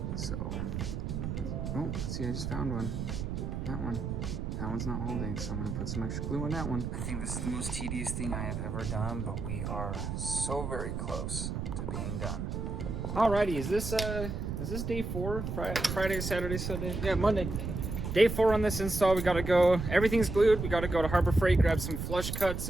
So, oh, see, I just found one. That one's not holding, so I'm gonna put some extra glue on that one. I think this is the most tedious thing I have ever done, but we are so very close to being done. Alrighty, is this day 4? Friday, Saturday, Sunday? Yeah, Monday. Day 4 on this install. We gotta go, everything's glued. We gotta go to Harbor Freight, grab some flush cuts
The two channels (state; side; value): noise; right; rumble, 4 dB below the sound